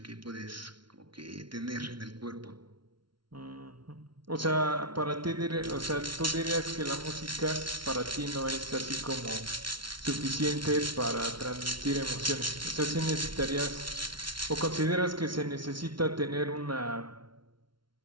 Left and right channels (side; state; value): left; late; 0.73 ms